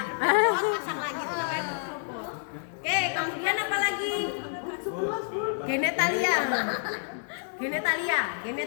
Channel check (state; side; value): silent; right; digital silence